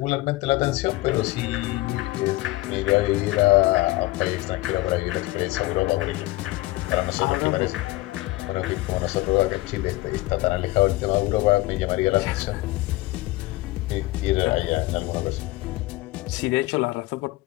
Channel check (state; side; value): quieter; right; 19.7 dB